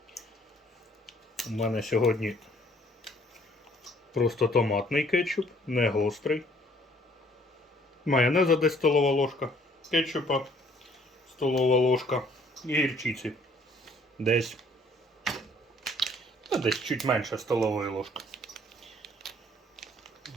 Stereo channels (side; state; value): both; normal; correlation 0.60